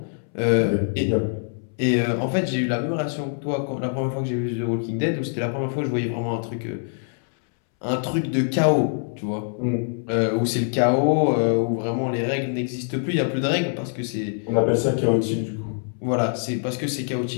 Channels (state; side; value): silent; right; 63 dB below the other